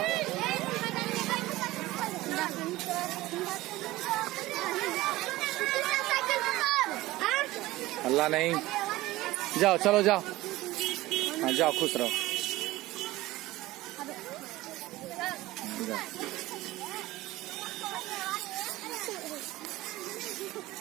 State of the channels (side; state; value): left; quieter; 18.1 dB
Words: अल्लाह नहीं। जाओ चलो जाओ। हाँ जाओ, खुश रहो।